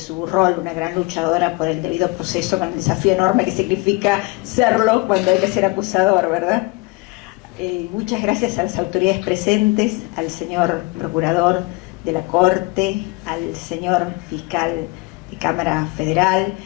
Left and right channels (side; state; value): right; quieter; 25.4 dB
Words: rol una gran luchadora por el debido proceso, con el desafío enorme que significa serlo cuando hay que ser acusador, ¿verdad? Muchas gracias a las autoridades presentes, al señor procurador de la Corte, al señor fiscal de Cámara Federal